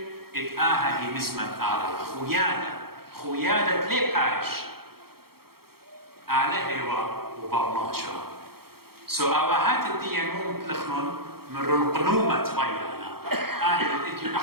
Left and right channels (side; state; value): left; late; 0.94 ms